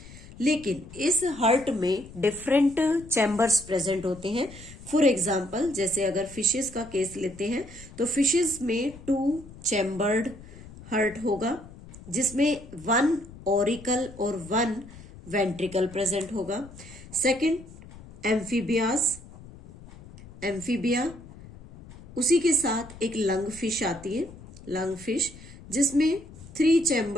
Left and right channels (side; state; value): left; noise; rumble, 18 dB below the sound